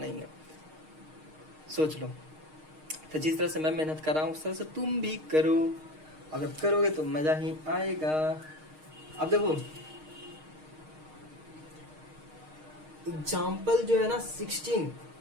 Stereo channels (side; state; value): left; late; 6.5 ms